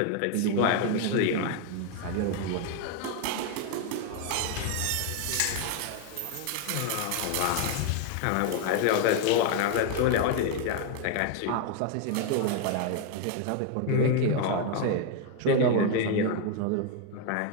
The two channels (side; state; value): both; different; correlation 0.01